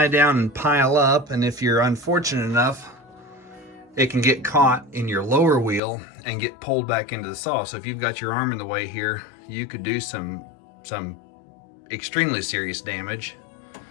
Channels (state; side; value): drops out; right; at 5.8 s